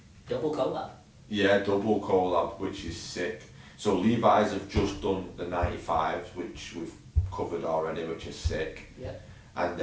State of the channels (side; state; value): both; identical; correlation 1.00